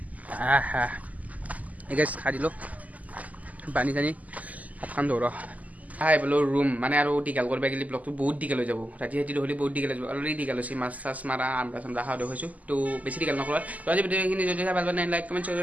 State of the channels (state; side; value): late; left; 0.075 ms